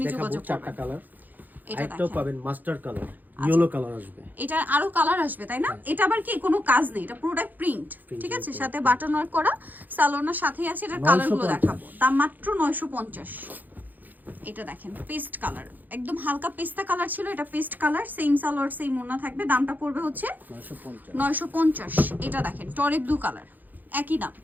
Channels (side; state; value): left; late; 0.084 ms